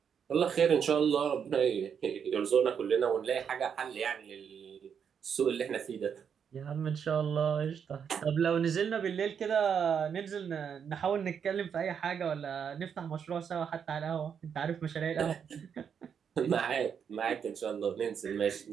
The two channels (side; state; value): left; quieter; 7.4 dB